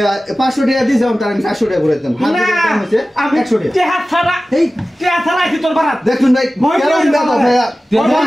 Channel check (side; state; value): both; normal; correlation 0.96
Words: 500 টাকা দিছে আমি তার 400 টাকা করে দিতাম। হারপিকের দাম হইছে 100 টাকা। টিয়া ছাড়া এই টিয়া ছাড়া কি তোর বারাত? দেখুন ভাই কেমন দাদা ভাইয়া